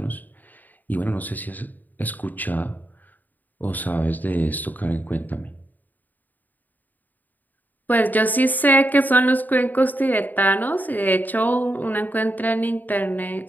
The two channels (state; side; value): late; right; 0.085 ms